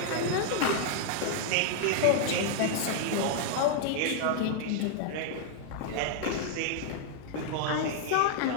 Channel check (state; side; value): different; both; correlation 0.00